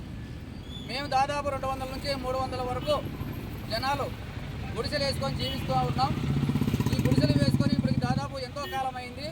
మేము దాదాపు 200 నుంచి 300 వరకు జనాలు గుడిసెలు వేసుకొని జీవిస్తూ ఉన్నాం. ఈ గుడిసెలు వేసుకొని ఇప్పటికి దాదాపు ఎంతో కాలం అయింది.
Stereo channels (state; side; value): identical; both; correlation 1.00